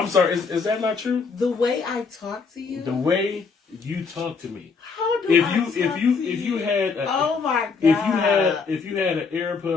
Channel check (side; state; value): right; quieter; 5.0 dB